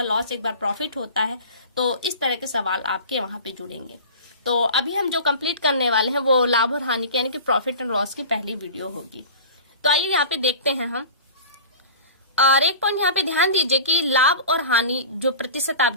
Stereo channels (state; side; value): inverted; both; correlation -0.37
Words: लॉस एक बार प्रॉफिट होता है। तो इस तरह के सवाल आपके वहां पे जुड़ेंगे। तो अभी हम जो कंप्लीट करने वाले हैं वो लाभ और हानि की यानी कि प्रॉफिट एंड लॉस की पहली वीडियो होगी। तो आइए यहाँ पे देखते हैं हम। और एक पॉइंट यहाँ पे ध्यान दीजिए कि लाभ और हानि जो प्रतिशत आप